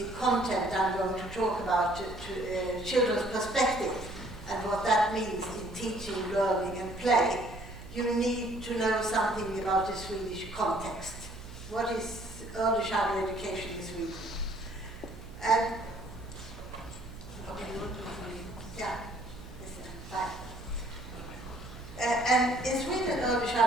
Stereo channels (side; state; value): right; noise; hum, 15 dB below the sound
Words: content I'm going to talk about to children's perspective and what that means in teaching, learning and play, you need to know something about the Swedish context. What is early childhood education in Sweden? And yeah, fine. And in Sweden, early